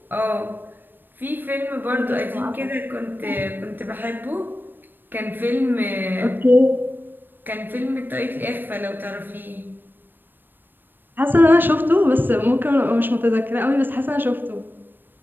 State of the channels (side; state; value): left; late; 0.094 ms